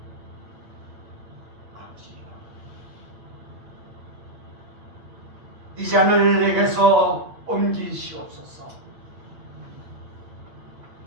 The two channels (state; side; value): late; left; 9.1 ms